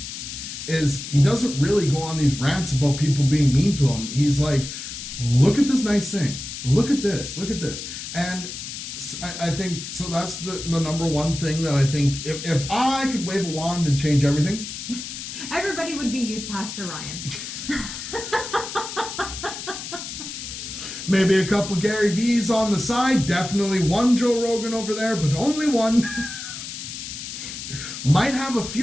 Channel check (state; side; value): noise; left; hiss, 8 dB below the sound